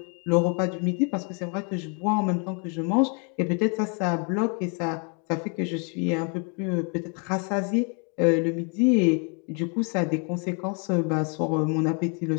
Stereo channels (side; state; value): right; quieter; 37.8 dB